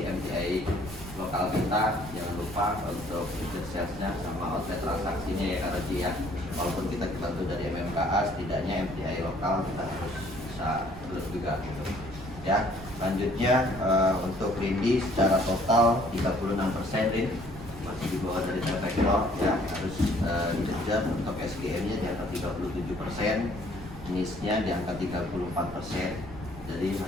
MTI lokal kita jangan lupa untuk tiket sales-nya sama outlet transaksinya ya Karoji ya. Walaupun kita dibantu dari MMKA, setidaknya MTI lokal kita harus bisa terus juga gitu ya. Selanjutnya untuk Rindi secara total 36% Rin, masih di bawah dari T-Vector ya, harus dikejar. Untuk SGM-nya di angka 37%, NIS-nya di angka 34%. Jadi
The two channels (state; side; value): noise; right; rumble, 15 dB below the sound